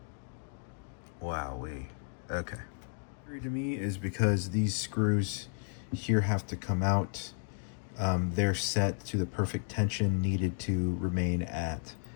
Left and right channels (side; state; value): right; silent; 56 dB below the other